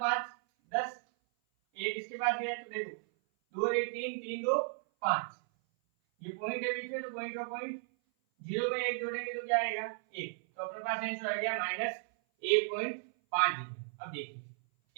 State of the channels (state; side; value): silent; left; 54 dB below the other